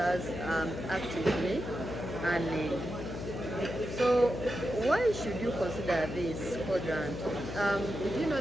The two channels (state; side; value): noise; left; hum, 7 dB below the sound